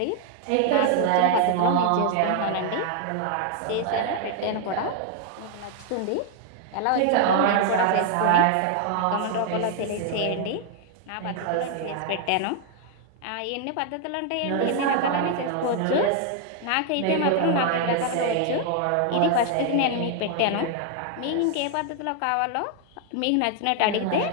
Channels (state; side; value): different; both; correlation 0.00